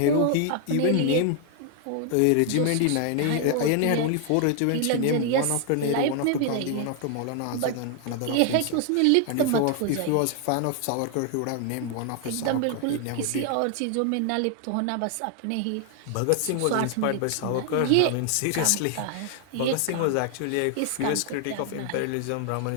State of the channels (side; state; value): both; different; correlation 0.00